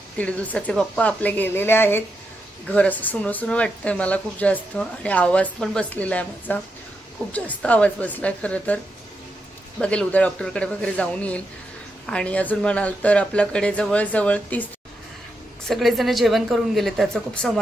1.5 दिवसाचे बाप्पा आपले गेलेले आहेत. घर असं सुनं सुनं वाटतंय मला खूप जास्त आणि आवाज पण बसलेला आहे माझा. खूप जास्त आवाज बसलाय खरं तर. बघेल उद्या डॉक्टरकडे वगैरे जाऊन येईल. आणि अजून म्हणाल तर आपल्याकडे जवळजवळ 30 सगळेजण जेवण करून गेले. त्याचं खूप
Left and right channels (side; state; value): both; normal; correlation 0.84